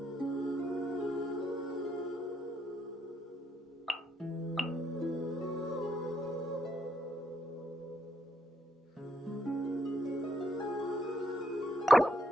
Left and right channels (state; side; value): normal; both; correlation 0.75